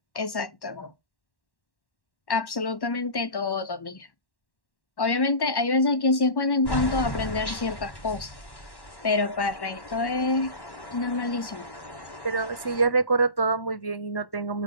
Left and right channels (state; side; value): late; right; 1.1 ms